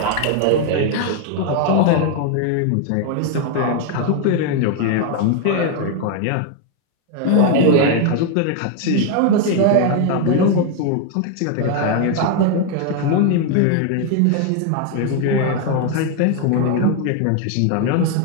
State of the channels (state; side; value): different; both; correlation 0.01